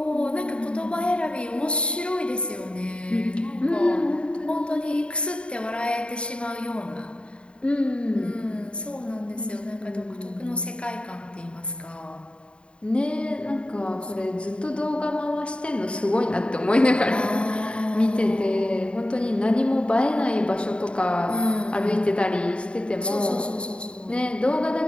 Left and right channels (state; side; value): late; right; 0.055 ms